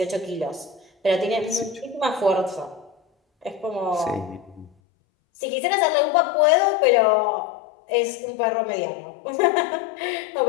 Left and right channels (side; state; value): right; drops out; at 4.7 s